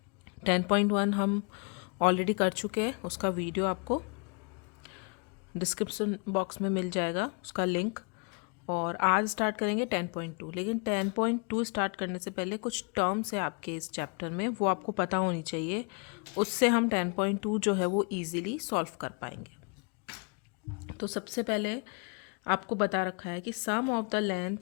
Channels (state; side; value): quieter; right; 36.5 dB